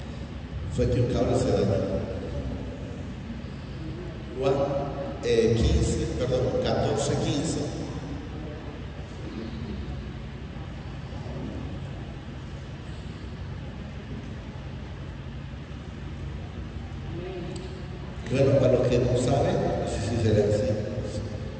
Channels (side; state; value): both; identical; correlation 1.00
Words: Fue que un cable se dañó. Juan 14, 15. Bueno, para los que no saben, no sé si será así.